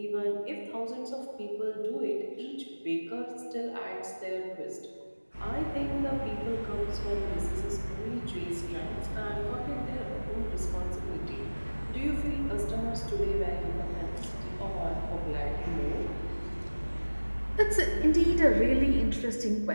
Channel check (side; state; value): both; inverted; correlation -1.00